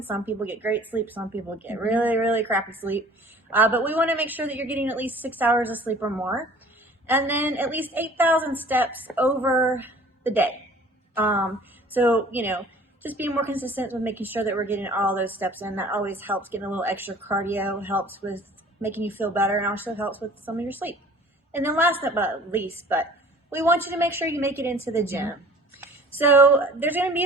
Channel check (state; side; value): normal; both; correlation 0.48